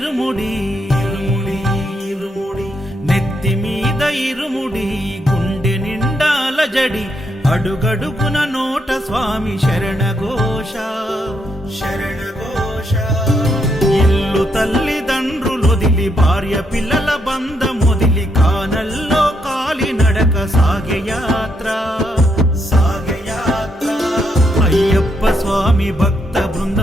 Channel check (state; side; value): normal; both; correlation 0.78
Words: ఇరుముడి ఇరుముడి నెత్తి మీద ఇరుముడి గుండె నిండాల జడి అడుగడుగున నోట స్వామి శరణఘోష శరణఘోష ఇల్లు తల్లిదండ్రులొదిలి భార్య పిల్లల బంధమొదిలి కానల్లో కాలి నడక సాగే యాత్ర అయ్యప్ప స్వామి భక్త